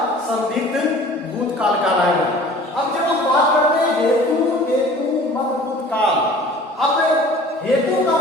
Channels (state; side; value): normal; both; correlation 0.46